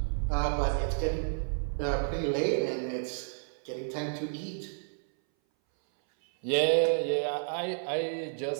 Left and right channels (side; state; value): left; silent; 57 dB below the other